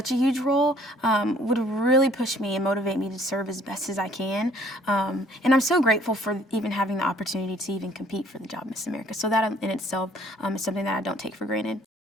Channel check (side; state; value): both; normal; correlation 0.59